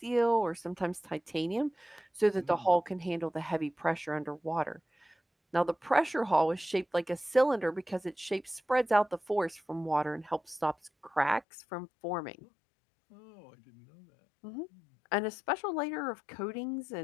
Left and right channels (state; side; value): drops out; right; at 11.5 s